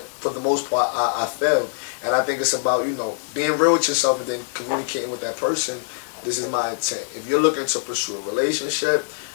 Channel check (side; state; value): right; silent; digital silence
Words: for the most part, I failed. And I think it's about, being real with yourself and then communicating with that person This is my intent. If you're looking to pursue a relationship,